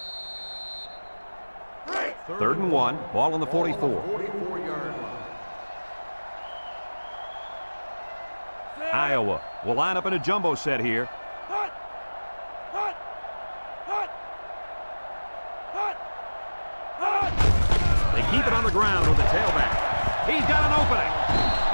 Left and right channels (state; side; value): inverted; both; correlation -1.00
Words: 3rd and 1. Ball on the 44. 44-yard line. Iowa will line up in a jumbo set here. They keep it on the ground with the tailback. He's got an opening.